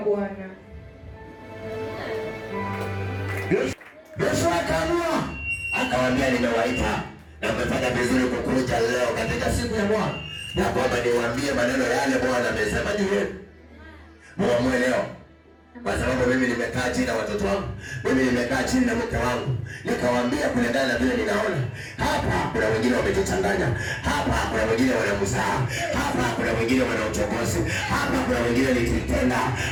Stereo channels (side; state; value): both; identical; correlation 1.00